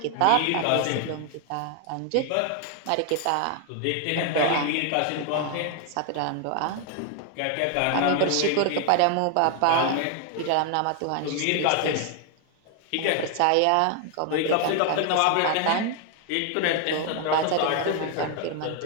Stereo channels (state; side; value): different; both; correlation 0.00